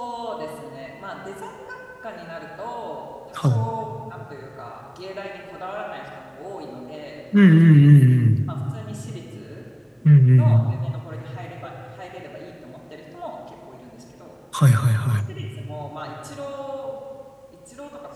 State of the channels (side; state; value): both; identical; correlation 1.00